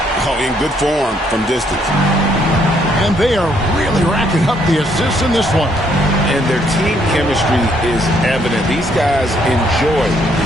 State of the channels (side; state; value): both; normal; correlation 0.70